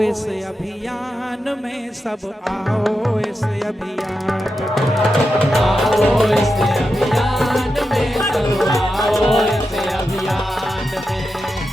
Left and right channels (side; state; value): both; normal; correlation 0.89